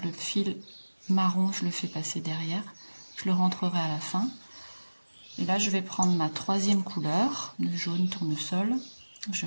le fil marron, je le fais passer derrière. Je le rentrerai à la fin. Et là, je vais prendre ma troisième couleur, le jaune tournesol. Je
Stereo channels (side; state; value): both; inverted; correlation -1.00